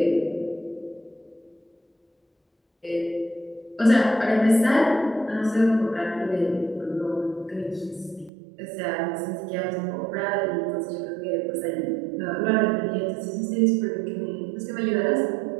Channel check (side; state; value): left; drops out; at 8.3 s